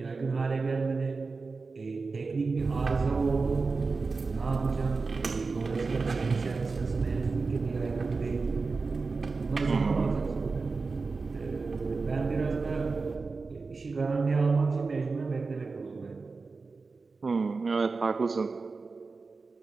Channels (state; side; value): quieter; left; 4.2 dB